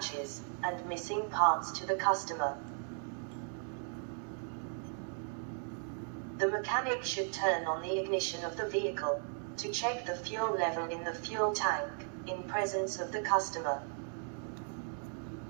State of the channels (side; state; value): left; silent; 53 dB below the other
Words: and missing parts to the customer. The mechanic should turn on the ignition of the vehicle to check the fuel level in the fuel tank in presence of the customer.